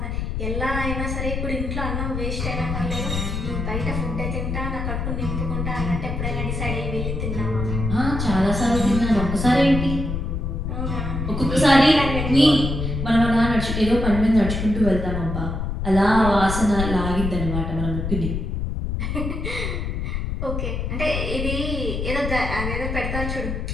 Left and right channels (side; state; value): left; noise; rumble, 3 dB below the sound